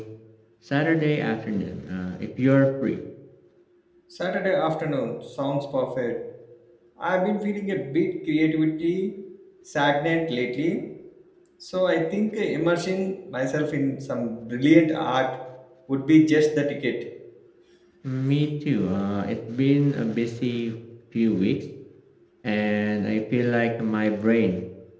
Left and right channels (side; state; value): both; identical; correlation 1.00